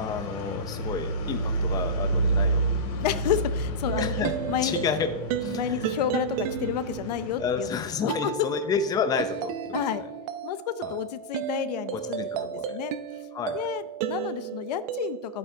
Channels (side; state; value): both; normal; correlation -0.09